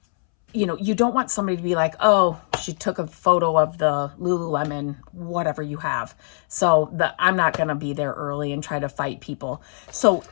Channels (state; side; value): silent; right; 64 dB below the other